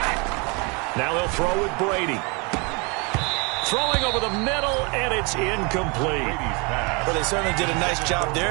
Now they'll throw with Brady. Throwing over the middle, and it's incomplete. Well, they certainly did a nice job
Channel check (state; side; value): quieter; left; 30.6 dB